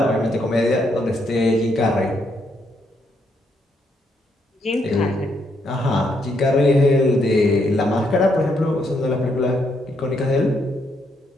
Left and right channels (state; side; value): normal; both; correlation 0.76